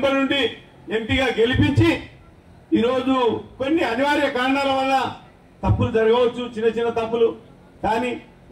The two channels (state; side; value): identical; both; correlation 1.00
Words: నుండి ఎంపీగా గెలిపించి ఈరోజు కొన్ని అనివార్య కారణాల వల్ల తప్పులు జరగవచ్చు, చిన్న చిన్న తప్పులు, కానీ